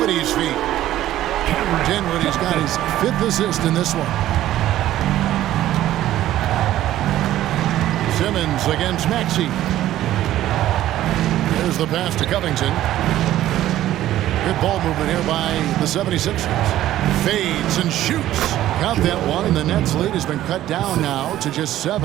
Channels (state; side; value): quieter; left; 13.6 dB